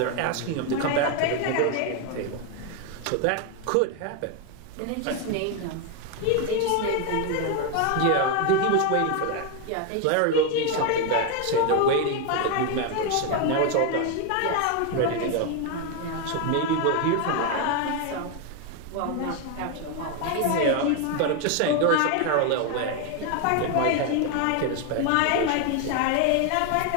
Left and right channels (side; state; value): both; different; correlation 0.01